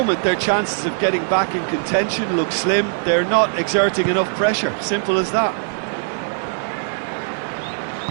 their chances of getting back in contention look slim. They're not exerting enough pressure. Simple as that.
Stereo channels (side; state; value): left; silent; 58 dB below the other